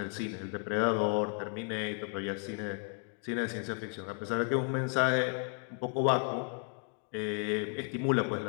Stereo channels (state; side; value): quieter; right; 38.8 dB